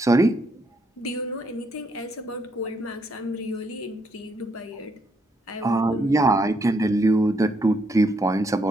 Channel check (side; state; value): both; normal; correlation 0.74